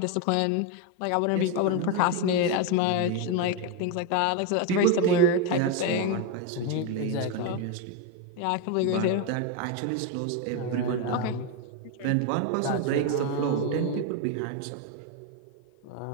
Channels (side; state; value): both; different; correlation 0.01